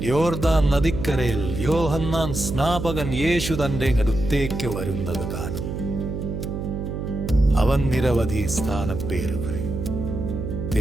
യോർദാൻ നദിക്കരയിൽ യോഹന്നാൻ സ്നാപകൻ യേശു തന്റെ അടുത്തേക്ക് വരുന്നത് കാണും. അവൻ നിരവധി സ്ഥാനപ്പേരുകൾ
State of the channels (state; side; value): noise; right; hum, 5 dB below the sound